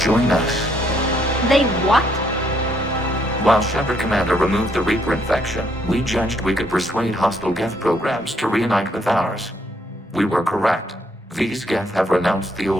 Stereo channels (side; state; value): both; normal; correlation 0.71